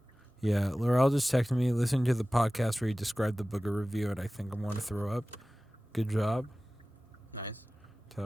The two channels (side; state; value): both; normal; correlation 0.97